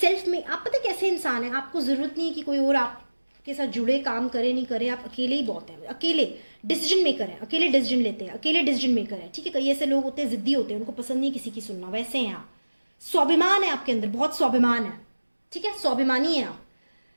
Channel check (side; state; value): both; inverted; correlation -1.00